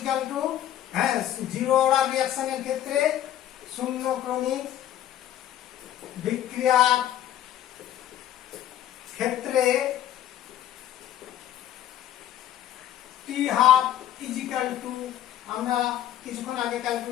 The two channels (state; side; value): quieter; right; 11.9 dB